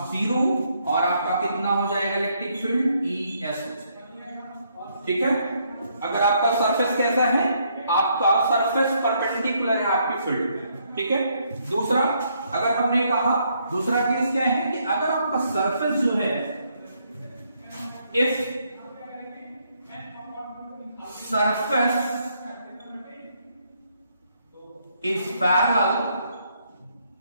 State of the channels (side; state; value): both; inverted; correlation -0.72